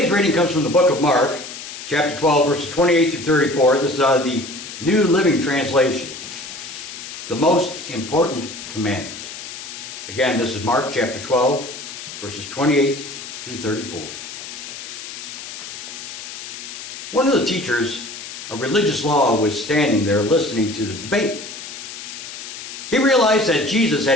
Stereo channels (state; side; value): noise; left; hiss, 11 dB below the sound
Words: reading comes from the book of Mark, chapter 12, verses 28 through 34. This is out of the New Living Translation. The Most Important Commandment. Again, this is Mark chapter 12, verses 28 through 34. One of the teachers of religious law was standing there listening to the debate. He realized that Jesus